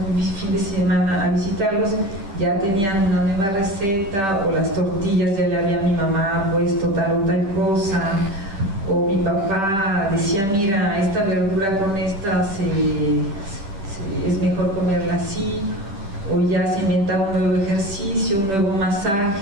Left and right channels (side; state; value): left; late; 10 ms